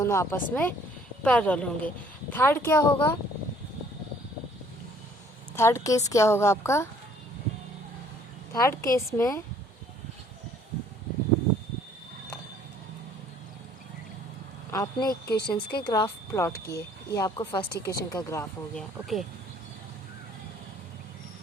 आपस में पैरेलल होंगे। थर्ड क्या होगा? थर्ड केस क्या होगा आपका? थर्ड केस में आपने इक्वेशंस के ग्राफ प्लॉट किए, ये आपको फर्स्ट इक्वेशन का ग्राफ हो गया, ओके।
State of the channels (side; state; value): both; normal; correlation 0.59